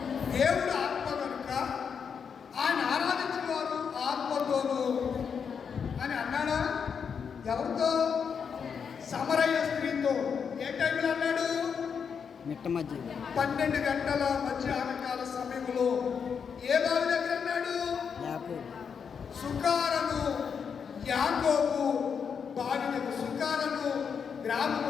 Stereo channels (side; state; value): right; quieter; 6.6 dB